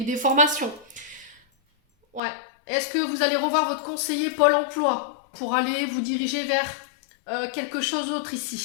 ou des formations? Ouais. Est-ce que vous allez revoir votre conseiller Pôle emploi pour aller vous diriger vers quelque chose d'autre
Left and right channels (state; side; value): drops out; right; at 2.2 s